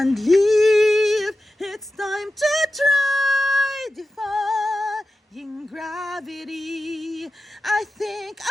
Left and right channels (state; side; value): normal; both; correlation 0.93